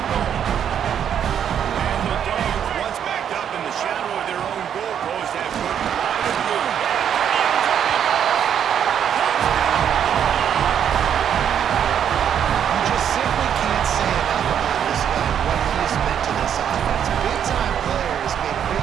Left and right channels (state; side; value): quieter; left; 8.9 dB